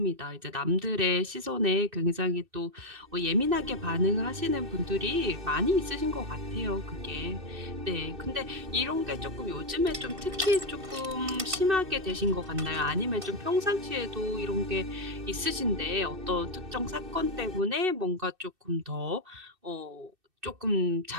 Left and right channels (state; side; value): late; left; 2.6 ms